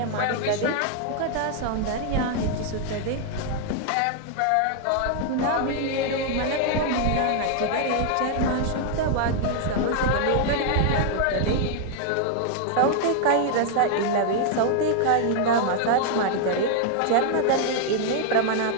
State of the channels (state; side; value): different; both; correlation 0.00